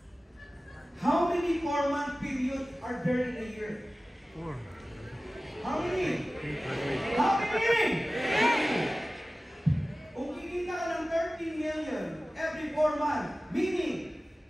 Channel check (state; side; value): normal; both; correlation 0.96